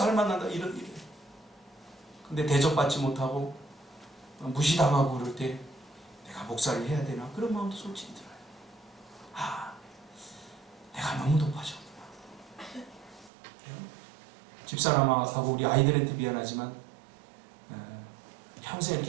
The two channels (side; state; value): left; drops out; at 13.3 s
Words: 할 만하다 이런 일이에요. 근데 대접받지 못하고 무시당하고 그럴 때 내가 목사를 해야 되나 그런 마음도 솔직히 들어요. 아, 내가 너무 높아졌구나. 집사람하고 우리 아이들한테 미안하지만 평생